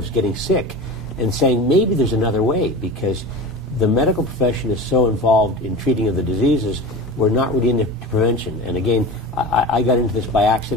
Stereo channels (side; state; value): both; normal; correlation 0.32